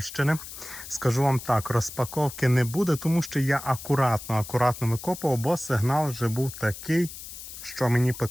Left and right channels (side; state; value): left; noise; hiss, 12 dB below the sound